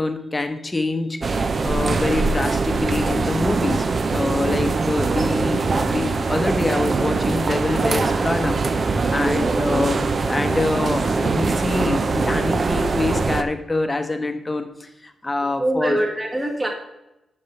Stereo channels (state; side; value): normal; both; correlation 0.90